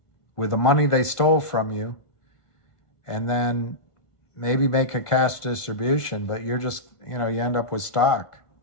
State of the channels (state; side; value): late; right; 1.5 ms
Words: with the money they stole from you, and then maybe make a cash distribution, but you're just, you end up with stock.